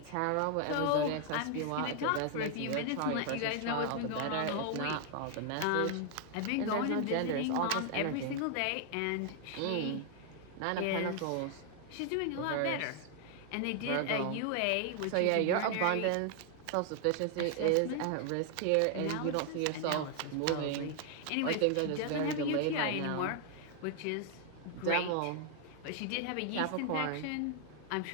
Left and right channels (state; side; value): different; both; correlation 0.00